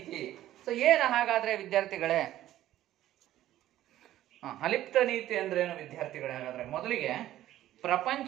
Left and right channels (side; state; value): left; quieter; 13.6 dB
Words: ಸೊ ಏನು ಹಾಗಾದ್ರೆ ವಿದ್ಯಾರ್ಥಿಗಳೇ? ಅಲಿಪ್ತ ನೀತಿ ಅಂದ್ರೇನು ವಿದ್ಯಾರ್ಥಿಗಳೇ? ಹಾಗಾದ್ರೆ ಮೊದಲಿಗೆ